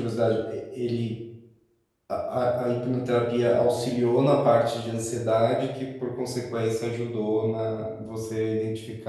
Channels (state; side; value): identical; both; correlation 1.00